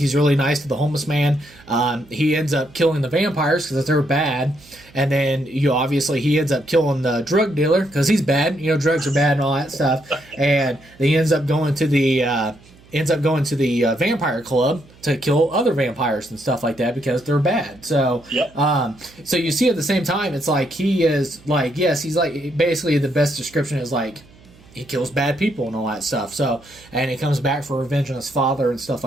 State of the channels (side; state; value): right; noise; hum, 26 dB below the sound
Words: really nice to the homeless man. He ends up killing the vampires because they're bad. And then, obviously, he ends up killing the drug dealer because he's bad. Drugs are bad and all that stuff. And he ends up going to the vampire club to kill other vampires and stuff like that because they're bad. So, so you see at the same time, it's like he is like, yes, he's like, basically the best description is like, he kills bad people and all that stuff. So, and he comes back for revenge on his father and stuff